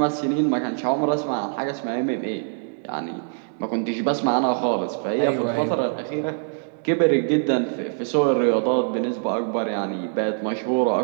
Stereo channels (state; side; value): silent; left; digital silence